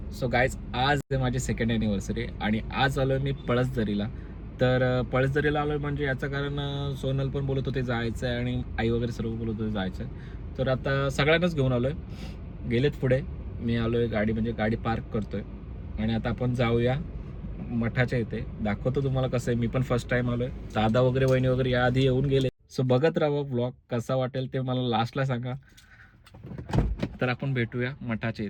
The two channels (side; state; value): both; identical; correlation 1.00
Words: सो गाईज, आज माझी सेकंड ॲनिव्हर्सरी आणि आज आलो मी पळसदरीला. तर पळसदरीला आलो म्हणजे याचं कारण सोनल पण बोलत होते जायचं आहे आणि आई वगैरे सर्व बोलत होते जायचं आहे. तर आता सगळ्यांनाच घेऊन आलो आहे. गेलेत पुढे, मी आलो आहे गाडी म्हणजे गाडी पार्क करतो आहे आणि आता आपण जाऊया मठाच्या इथे. दाखवतो तुम्हाला कसं आहे. मी पण फर्स्ट टाईम आलो आहे. दादा वगैरे वहिनी वगैरे याआधी येऊन गेले. सो बघत राहा ब्लॉग, कसा वाटेल ते मला लास्टला सांगा. तर आपण भेटूया मठाच्या